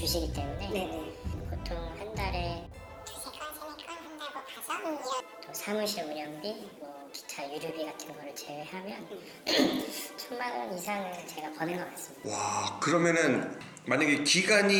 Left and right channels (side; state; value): both; identical; correlation 1.00